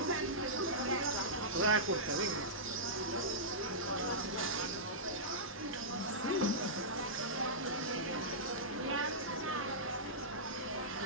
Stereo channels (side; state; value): both; normal; correlation -0.14